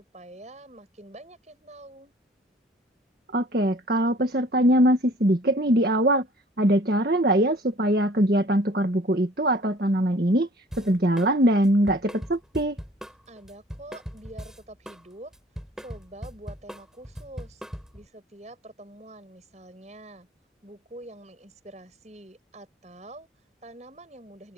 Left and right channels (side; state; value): both; normal; correlation 0.53